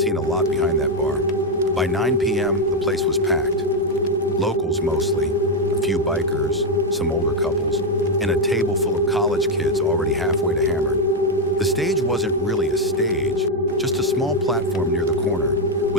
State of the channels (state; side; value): normal; both; correlation 0.03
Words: a lot behind that bar. By 9 p.m., the place was packed. Locals mostly, a few bikers, some older couples, and a table full of college kids already halfway to Hammered. The stage wasn't really a stage, just a small platform near the corner